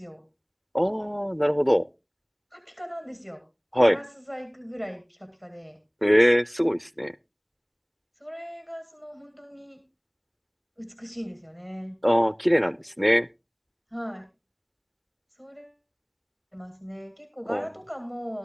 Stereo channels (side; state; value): both; identical; correlation 1.00